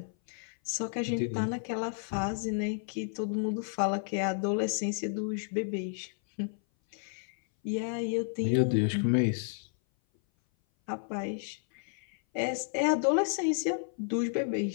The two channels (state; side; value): silent; right; 56 dB below the other